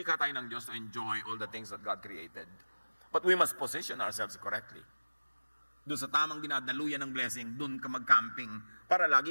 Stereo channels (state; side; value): inverted; both; correlation -1.00